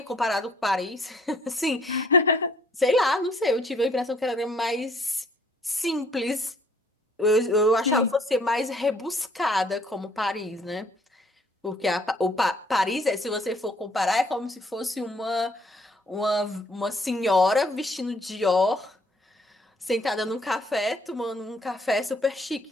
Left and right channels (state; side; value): normal; both; correlation 0.62